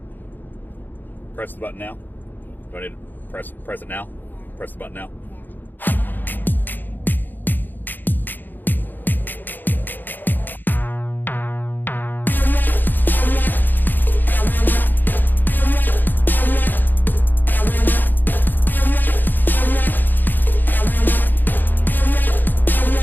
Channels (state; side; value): late; right; 0.089 ms